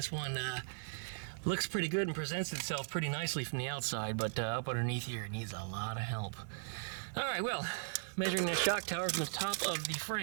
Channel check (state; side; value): silent; left; digital silence